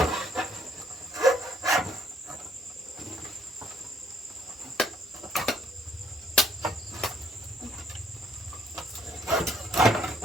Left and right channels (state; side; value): normal; both; correlation 0.65